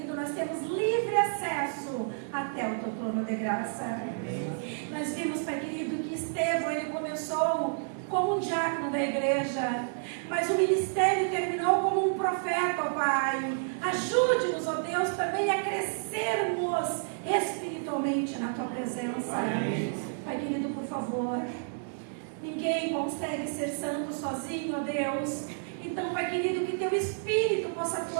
nós temos livre acesso até o Teu trono de graça. Nós vimos, Pai querido, que Estevão, ele começou como um diácono da igreja, mas o ministério terminou como um profeta, ó Pai. Ajude-nos, ó Deus, também a crescermos espiritualmente na Tua presença. Pai querido, por favor, ninguém consegue ser santo sozinho, ó Deus. Então, Pai querido, que Teu Espírito possa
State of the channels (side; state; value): left; silent; digital silence